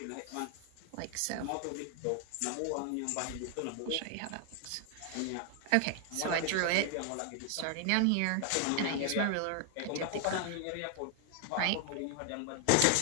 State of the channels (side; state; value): both; different; correlation 0.00